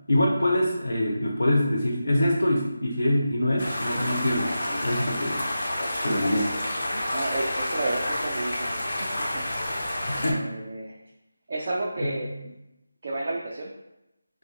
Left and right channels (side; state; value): both; inverted; correlation -0.91